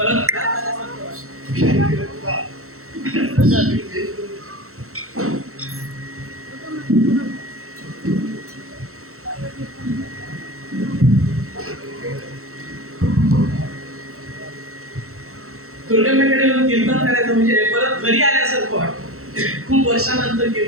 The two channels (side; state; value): left; late; 0.63 ms